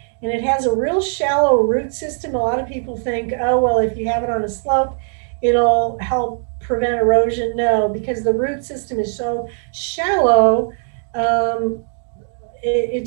and it has a real shallow root system. A lot of people think, oh well, if you have it on a slope, it'll help prevent erosion. No, because the root system is so shallow. Um, it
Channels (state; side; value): silent; left; digital silence